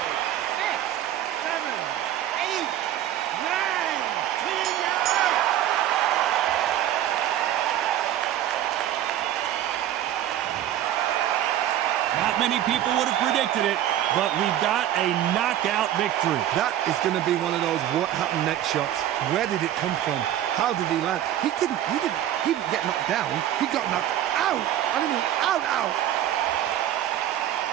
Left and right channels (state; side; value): quieter; left; 12.0 dB